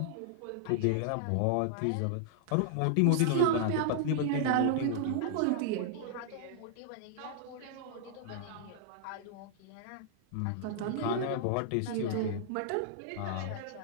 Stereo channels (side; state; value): both; different; correlation -0.01